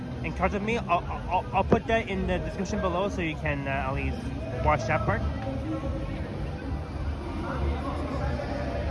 encountered me. I'll put that in the description below so you can at least watch that part.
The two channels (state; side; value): identical; both; correlation 1.00